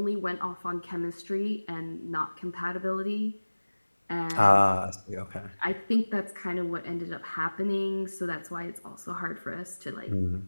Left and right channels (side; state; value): both; inverted; correlation -1.00